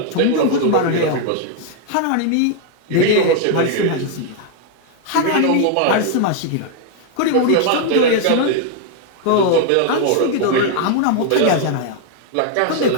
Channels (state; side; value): different; both; correlation 0.00